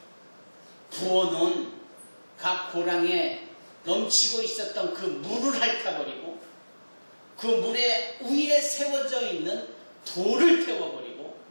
부어놓은 각 고랑에 넘치고 있었던 그 물을 핥아버리고 그 물에 위에 세워져 있는 돌을 태워버리고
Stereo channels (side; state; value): both; inverted; correlation -1.00